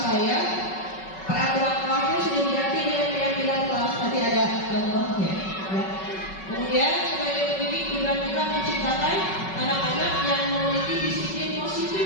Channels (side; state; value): right; late; 5.3 ms